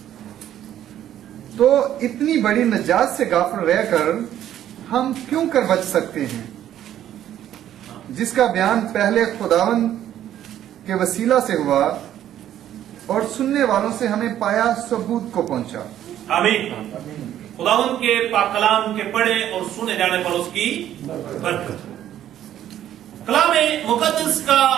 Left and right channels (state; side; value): quieter; left; 11.5 dB